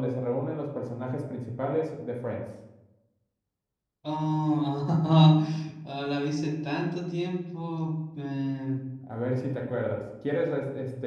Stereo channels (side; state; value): both; identical; correlation 1.00